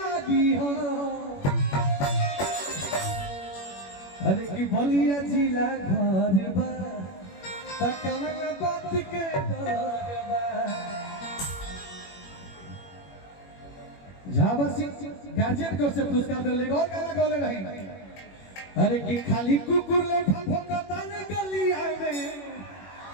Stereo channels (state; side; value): late; right; 21 ms